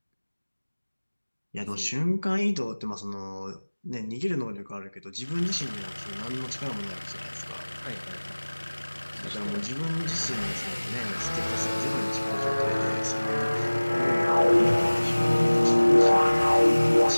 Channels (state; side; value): inverted; both; correlation -1.00